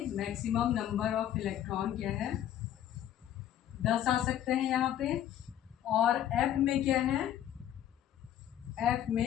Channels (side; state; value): right; quieter; 11.2 dB